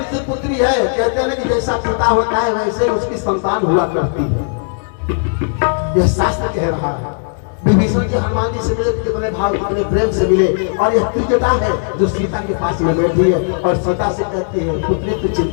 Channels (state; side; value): silent; right; digital silence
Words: की पुत्री है। कहते हैं कि जैसा पिता होता है वैसे उसकी संतान हुआ करती है, यह शास्त्र कह रहा है। विभीषण जी हनुमान जी से मिले, कितने भाव कितने प्रेम से मिले। और यह त्रिजटा है जो सीता के पास में बैठी है और सीता से कहती है पुत्री तू